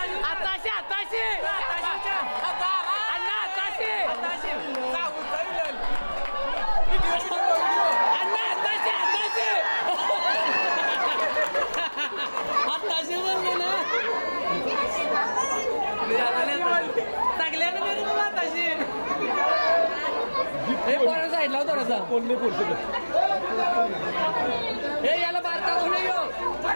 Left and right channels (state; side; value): inverted; both; correlation -1.00